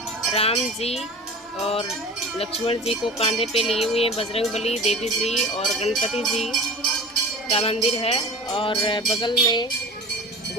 राम जी और लक्ष्मण जी को कांधे पे लिए हुए हैं। बजरंगबली, देवी जी और गणपति जी का मंदिर है। और बगल में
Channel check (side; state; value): both; normal; correlation 0.36